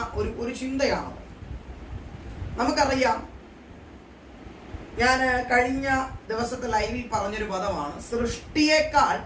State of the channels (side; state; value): both; identical; correlation 1.00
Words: ഒരു ചിന്തയാണ്. നമുക്കറിയാം, ഞാൻ കഴിഞ്ഞ ദിവസത്തെ ലൈവിൽ പറഞ്ഞൊരു പദമാണ്, സൃഷ്ടിയേക്കാൾ